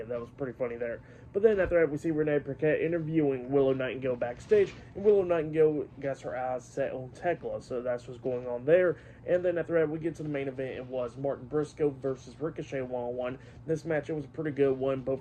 that was pretty funny there. But then after that, we see Renee Paquette interviewing Willow Nightingale backstage, and Willow Nightingale got her eyes set on Tekla, so that's what's going on there. And then after that, we get to the main event. It was Martin Briscoe versus Ricochet one-on-one. This match, it was a pretty good one. Both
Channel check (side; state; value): both; identical; correlation 1.00